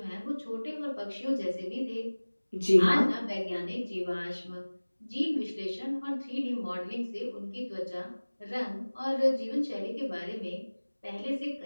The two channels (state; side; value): inverted; both; correlation -1.00